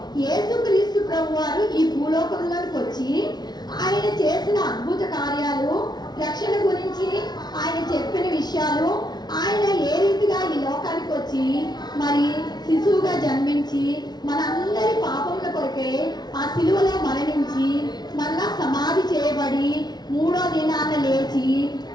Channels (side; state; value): right; late; 0.19 ms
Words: యేసుక్రీస్తు ప్రభు వారు ఈ భూలోకంలోకి వచ్చి ఆయన చేసిన అద్భుత కార్యాలు, రక్షణ గురించి ఆయన చెప్పిన విషయాలు, ఆయన ఏ రీతిగా ఈ లోకానికి వచ్చి మరి శిశువుగా జన్మించి మనందరి పాపముల కొరకే ఆ శిలువలో మరణించి మళ్ళా సమాధి చేయబడి 3వ దినాన లేచి